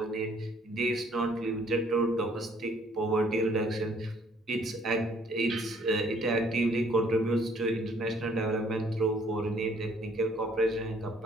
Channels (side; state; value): both; normal; correlation 0.62